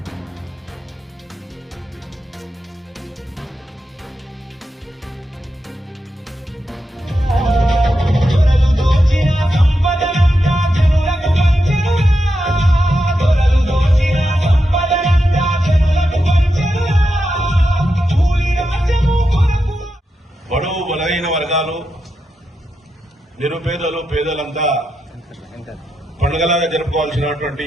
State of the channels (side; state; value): both; normal; correlation 0.87